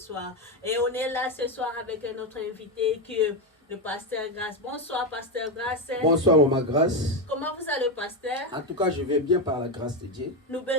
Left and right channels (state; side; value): normal; both; correlation 0.10